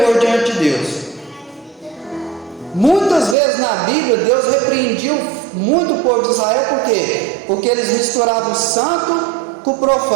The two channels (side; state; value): left; drops out; at 3.4 s